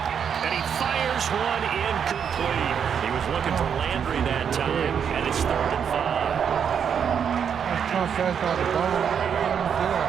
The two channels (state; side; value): quieter; left; 7.6 dB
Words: And he fires one incomplete. He was looking for Landry that time, and it's 3rd and 5. A